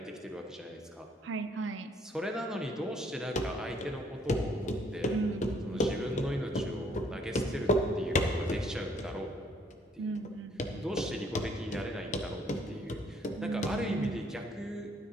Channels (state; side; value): normal; both; correlation 0.64